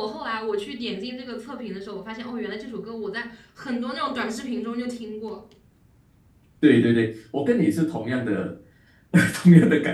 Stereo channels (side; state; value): both; identical; correlation 1.00